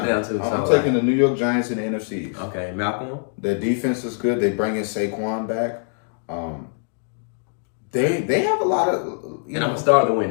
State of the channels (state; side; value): silent; right; 59 dB below the other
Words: too. I'm taking the New York Giants in the NFC East. Okay, Malcolm. Their defense is good. They bring in Saquon back. They have a lot of. And I'm gonna start the